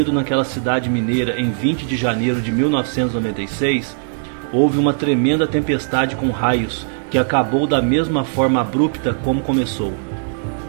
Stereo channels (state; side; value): silent; left; 59 dB below the other